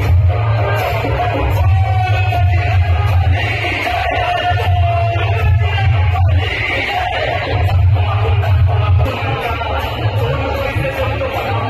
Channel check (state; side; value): identical; both; correlation 1.00